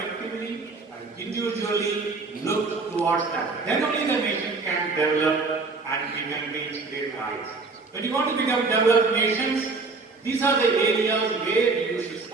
and individually look towards that. Then only the nation can develop and we can reach their heights. When you want to become developed nations, these are the areas where you should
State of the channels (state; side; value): quieter; left; 4.0 dB